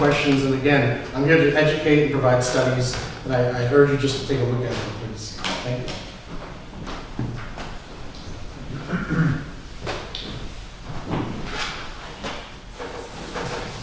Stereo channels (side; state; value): both; identical; correlation 1.00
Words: And again, I'm here to educate and provide studies. And I urge you just to take a look at them, please. Thank you.